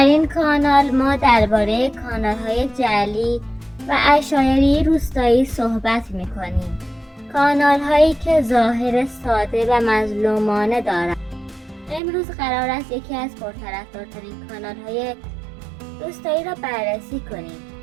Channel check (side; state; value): left; drops out; at 12.0 s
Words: این کانال ما درباره کانال‌های جعلی و عشایری روستایی صحبت می‌کنیم. کانال‌هایی که ظاهر ساده و مظلومانه دارند. امروز قرار است یکی از پرطرفدارترین کانال‌های روستایی را بررسی کنیم